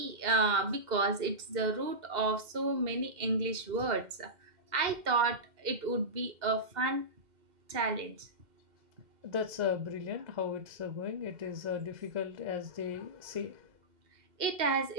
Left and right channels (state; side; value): late; left; 2.1 ms